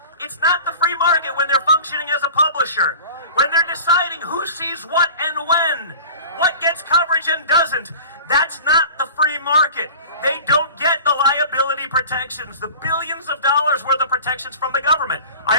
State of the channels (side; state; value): both; inverted; correlation -0.39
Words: it's not the free market when they're functioning as a publisher, when they're deciding who sees what and when, what gets coverage and doesn't. That's not the free market. They don't get the liability protections, the billions of dollars worth of protections from the government. I